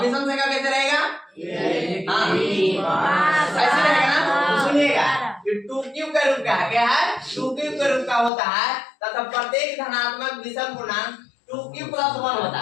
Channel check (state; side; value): drops out; right; at 8.3 s